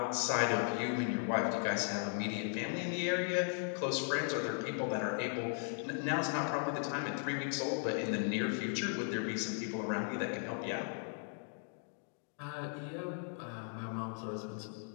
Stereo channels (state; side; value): silent; right; 53 dB below the other